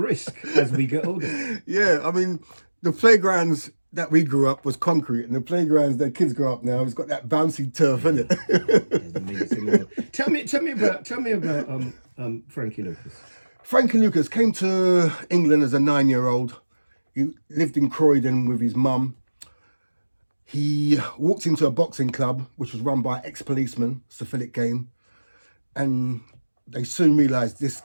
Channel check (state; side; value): inverted; both; correlation -1.00